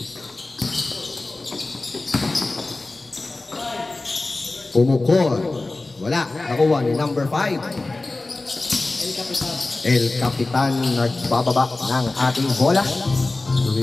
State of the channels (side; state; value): right; quieter; 3.2 dB